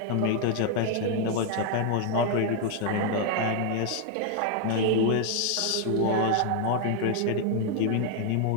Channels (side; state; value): both; different; correlation 0.00